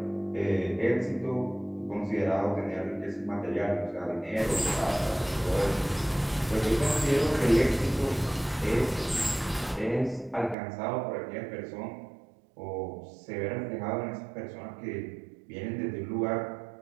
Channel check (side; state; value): left; drops out; at 10.6 s